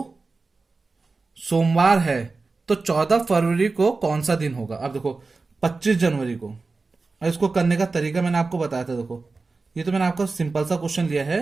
सोमवार है तो 14 फरवरी को कौन सा दिन होगा। अब देखो 25 जनवरी को, इसको करने का तरीका मैंने आपको बताया था। देखो ये तो मैंने आपको सिंपल सा क्वेश्चन लिया है,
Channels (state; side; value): quieter; left; 3.9 dB